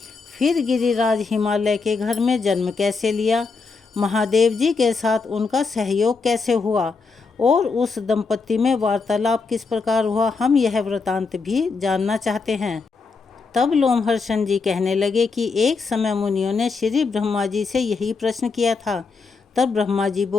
फिर गिरिराज हिमालय के घर में जन्म कैसे लिया? महादेव जी के साथ उनका सहयोग कैसे हुआ और उस दंपति में वार्तालाप किस प्रकार हुआ? हम यह वृतांत भी जानना चाहते हैं। तब लोमहर्षण जी कहने लगे कि एक समय मुनियों ने श्री ब्रह्मा जी से यही प्रश्न किया था। तब ब्रह्मा जी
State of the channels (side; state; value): right; quieter; 4.5 dB